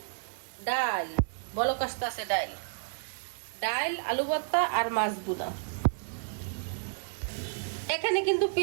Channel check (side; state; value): left; silent; digital silence